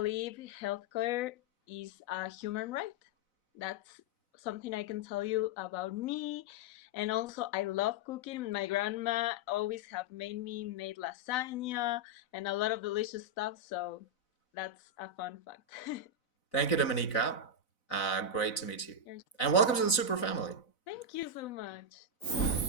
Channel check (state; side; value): late; right; 4.0 ms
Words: healthcare is a human right. That's something I can tell you about me. And also, I love cooking. My grandma always have made lasagna and a lot of delicious stuff. So that's a fun fact. Thank you, Dominica. Great to meet you. You're- And welcome to the Super Family. Thank you so much.